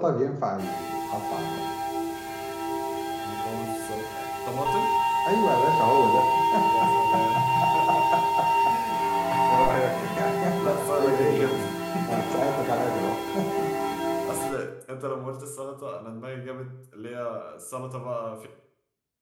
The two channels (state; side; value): identical; both; correlation 1.00